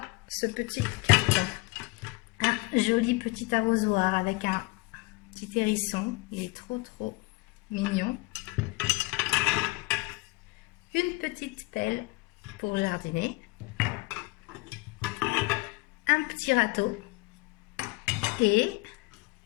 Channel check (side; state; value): right; quieter; 23.5 dB